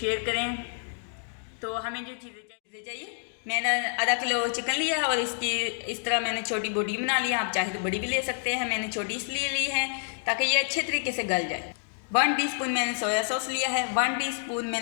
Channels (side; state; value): right; silent; digital silence